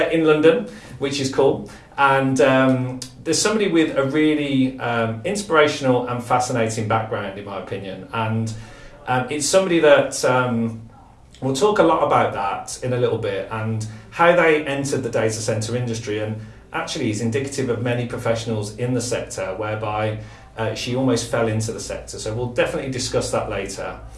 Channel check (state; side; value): identical; both; correlation 1.00